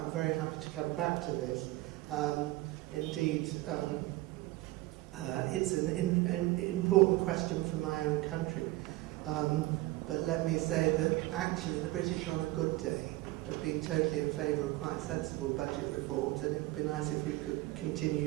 very happy to come back to this. Indeed, it's an important question for my own country. But let me say that actually the British on a good day have been totally in favour of quite sensible budget reforms, and it would be nice if we could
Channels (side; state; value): left; quieter; 19.1 dB